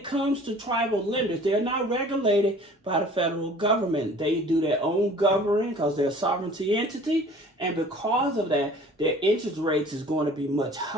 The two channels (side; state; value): both; normal; correlation 0.48